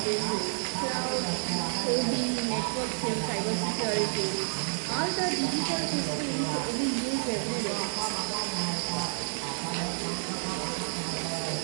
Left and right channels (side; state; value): left; silent; 58 dB below the other